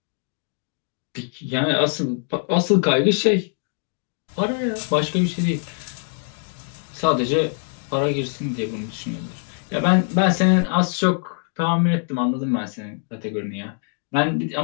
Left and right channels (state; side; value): silent; right; 57 dB below the other